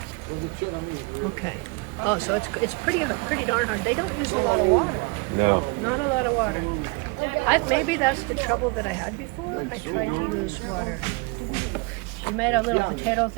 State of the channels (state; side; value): quieter; left; 28.1 dB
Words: Okay. Oh, so it's pretty darn hard. They don't use a lot of water. No. Not a lot of water. Maybe that's the trouble that I had before. I tried to use water. She made a little potato